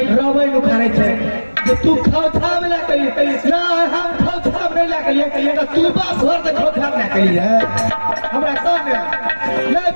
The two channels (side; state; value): both; inverted; correlation -1.00